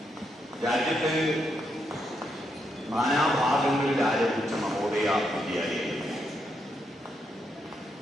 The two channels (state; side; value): normal; both; correlation 0.80